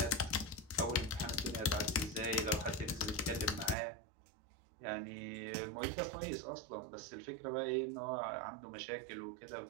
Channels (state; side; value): drops out; left; at 3.8 s